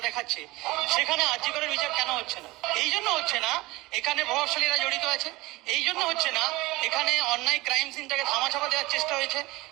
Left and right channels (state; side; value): quieter; left; 20.8 dB